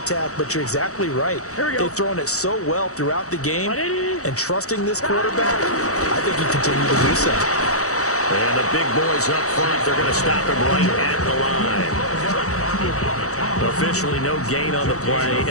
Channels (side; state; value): right; late; 0.65 ms